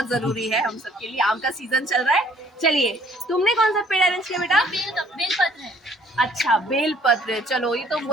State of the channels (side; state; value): both; normal; correlation 0.59